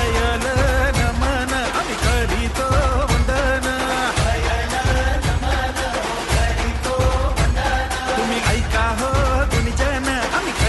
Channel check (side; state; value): both; identical; correlation 1.00